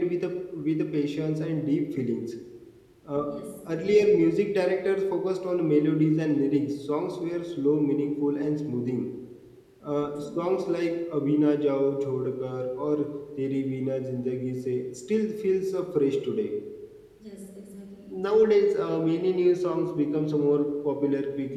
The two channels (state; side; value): identical; both; correlation 1.00